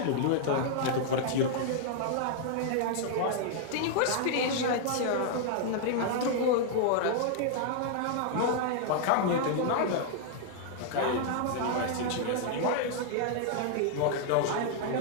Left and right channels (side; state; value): both; different; correlation -0.01